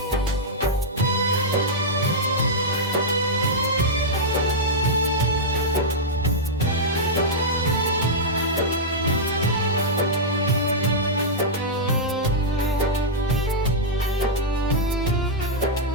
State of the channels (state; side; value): normal; both; correlation -0.07